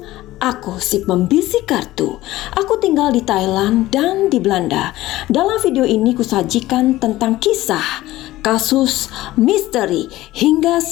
Aku si pembisik kartu. Aku tinggal di Thailand dan di Belanda. Dalam video ini kusajikan tentang kisah, kasus, misteri, hingga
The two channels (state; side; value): quieter; right; 16.5 dB